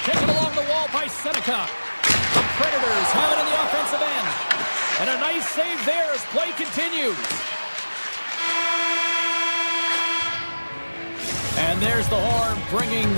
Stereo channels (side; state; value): both; inverted; correlation -1.00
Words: Seneca. The Predators have it in the offensive end. And a nice save there as play continues. And there's the horn, bringing